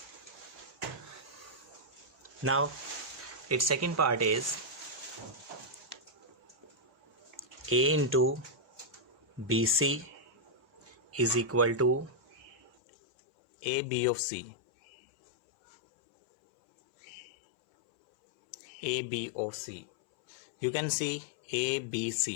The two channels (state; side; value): drops out; right; at 12.7 s